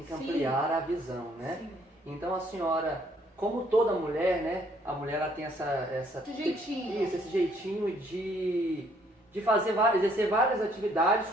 que ampliar a visão, né? Sim. Então a senhora, como toda mulher, né? A mulher ela tem esse jeitinho. Isso, esse jeitinho de exercer várias atividades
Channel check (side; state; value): both; normal; correlation 0.65